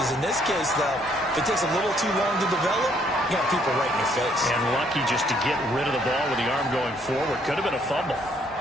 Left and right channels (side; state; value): both; normal; correlation 0.67